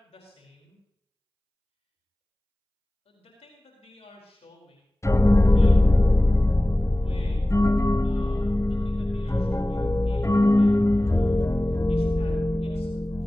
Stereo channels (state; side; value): normal; both; correlation 0.97